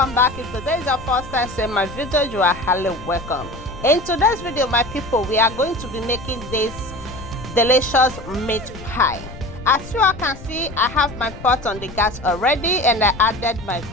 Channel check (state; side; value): noise; left; rumble, 14 dB below the sound